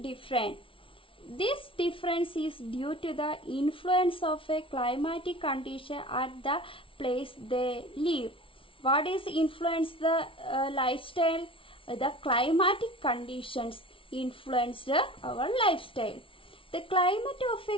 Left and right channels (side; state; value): right; late; 0.25 ms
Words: different. This difference is due to the influence of a climatic condition at the place they live. What is influence the lifestyle? The climatic conditions influenced our lifestyle. The climate of